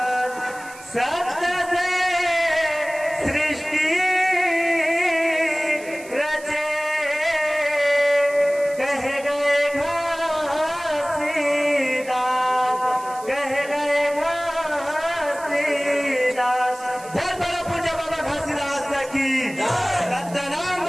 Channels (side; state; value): right; noise; hiss, 19 dB below the sound